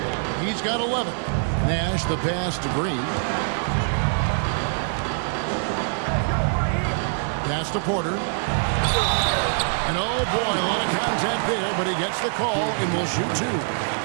He's got 11. Nash, the pass to Green. Pass to Porter. And oh boy, a lot of contact there, but he gets the call and will shoot 2.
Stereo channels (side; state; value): left; silent; digital silence